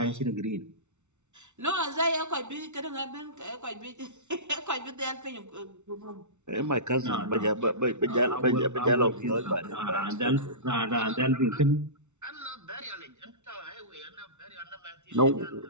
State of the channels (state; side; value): late; left; 0.83 ms